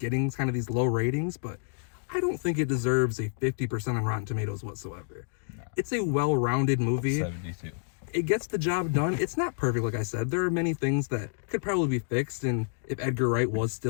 kind of these low ratings, but I don't think it deserves a 50% on Rotten Tomatoes whatsoever. No. It's a well-rounded movie. 72. It gets the job done. It's not perfect, like I said. There are many things that could probably be fixed, and if Edgar Wright was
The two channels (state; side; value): silent; right; digital silence